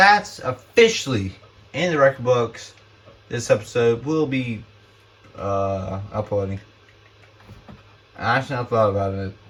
officially in the record books. This episode will be uploading. I actually not thought about it.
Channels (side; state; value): both; identical; correlation 1.00